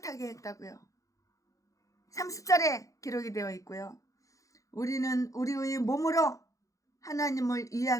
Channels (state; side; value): late; right; 0.16 ms